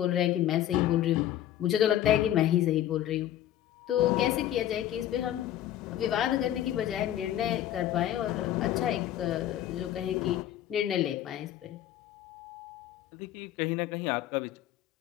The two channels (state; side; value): quieter; right; 12.2 dB